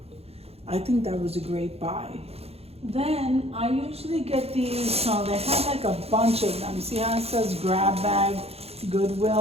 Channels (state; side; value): late; left; 0.29 ms